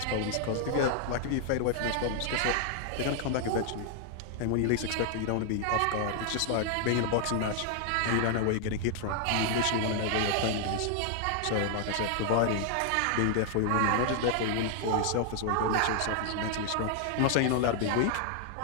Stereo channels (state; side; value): different; both; correlation 0.00